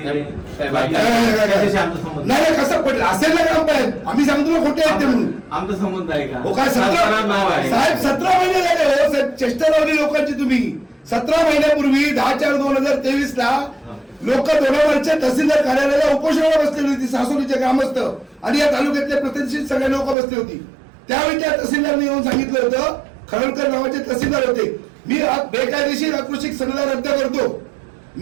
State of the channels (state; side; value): drops out; left; at 20.2 s